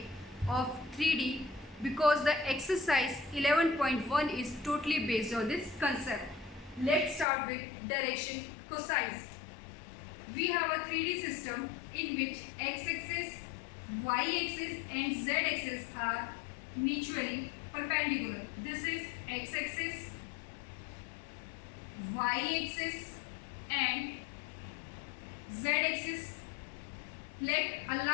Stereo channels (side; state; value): right; drops out; at 7.2 s